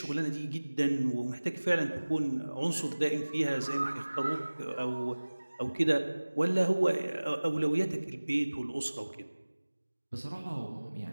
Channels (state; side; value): inverted; both; correlation -1.00